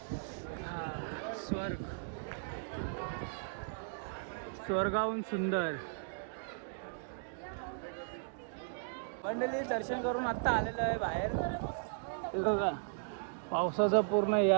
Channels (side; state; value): left; silent; digital silence